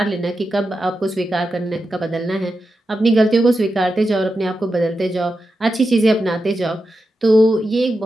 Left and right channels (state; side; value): normal; both; correlation 0.89